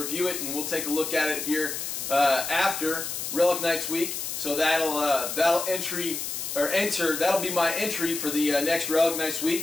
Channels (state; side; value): noise; left; hiss, 5 dB below the sound